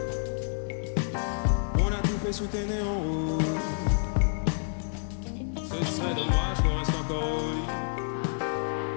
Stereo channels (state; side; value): silent; right; 59 dB below the other